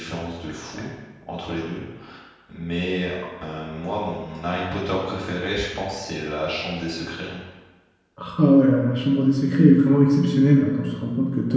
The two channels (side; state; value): both; identical; correlation 1.00